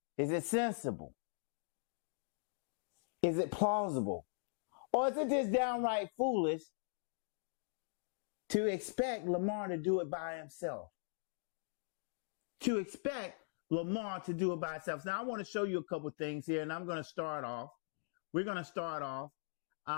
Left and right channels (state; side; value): silent; right; digital silence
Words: Is it sensible? Is it plausible? Or is it just downright foolish to expect Lamar to do it by himself? To expect Lamar to do it by himself. Now, I want to show you a couple things here, and I'm going to start off. We're going to start off,